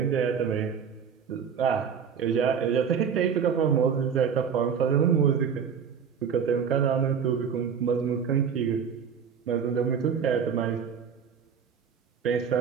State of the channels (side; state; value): left; quieter; 7.1 dB